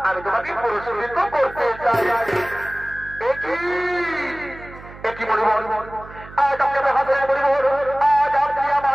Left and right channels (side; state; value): right; noise; hum, 17 dB below the sound